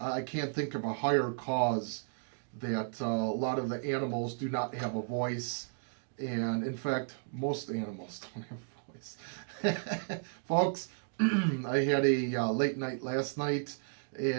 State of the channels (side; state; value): left; silent; digital silence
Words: I can't think of a higher cause that a lot of the animals do not have a voice, and in fact, most animals don't have a voice. Folks, I had a late night last night,